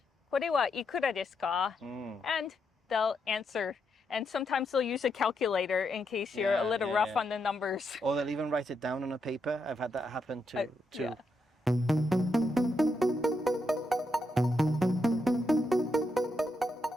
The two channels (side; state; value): both; normal; correlation 0.81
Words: これはいくらですか? And they'll answer. And sometimes they'll use a calculator in case you're a little rough on the numbers. Or they'll even write it down on a paper. I've had that happen too. Yeah.